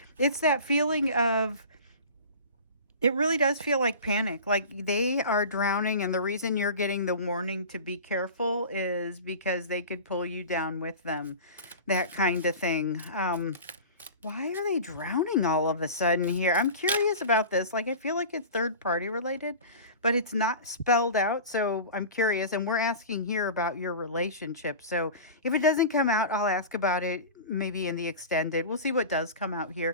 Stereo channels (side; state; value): both; inverted; correlation -0.35